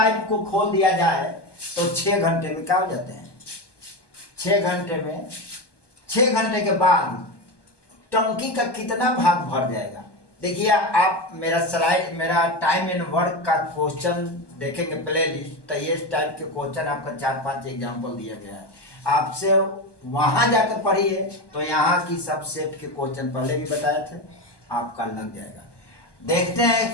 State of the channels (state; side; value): late; right; 1.2 ms